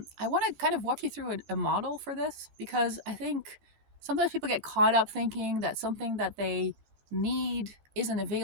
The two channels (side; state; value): left; late; 14 ms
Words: want to kind of walk you through a model for this because I think sometimes people get caught up thinking that something that they need isn't